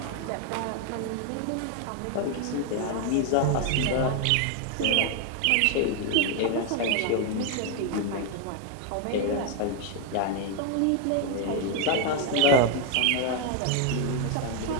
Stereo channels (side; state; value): both; different; correlation 0.01